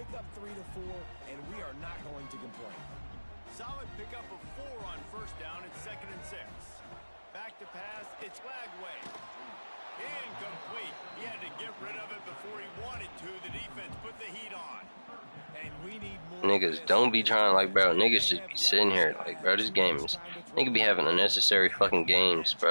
up 3 to 4, and we are not going to complain. Solid pickup of 4 on 1st down. It's 2nd and 6. Back to pass. It's Lagway. Incomplete. He had to get rid of it before he wanted to. The defense put the heat on. And we need more. Niggas don't be trying, like, bro. Niggas just be sitting here like, bro, this game is, nigga be having unnecessary fucking games,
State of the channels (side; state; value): both; inverted; correlation -1.00